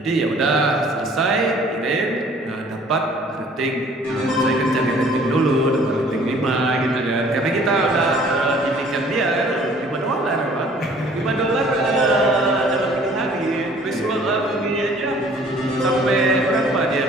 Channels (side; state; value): both; normal; correlation 0.54